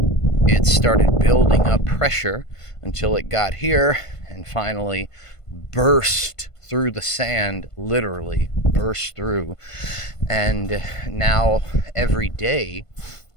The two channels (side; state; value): right; late; 1.5 ms